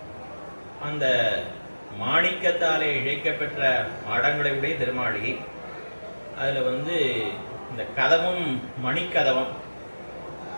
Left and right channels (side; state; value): both; inverted; correlation -1.00